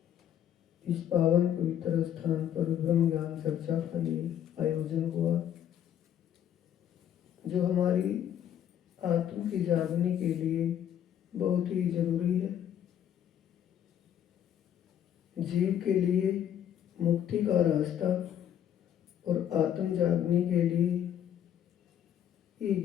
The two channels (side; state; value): right; quieter; 10.1 dB